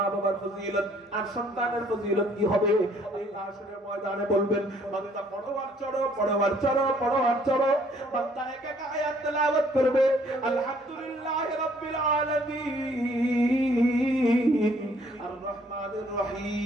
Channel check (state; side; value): normal; both; correlation 0.62